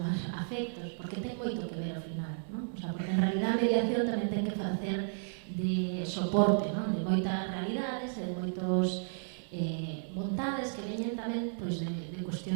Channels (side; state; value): left; silent; 56 dB below the other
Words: afectos, porque ten moito que ver ao final, non? O sea, porque en realidad a mediación tamén ten que facer de soporte, non? De moitas realidades e de moitos vontades que veñen tamén pois, de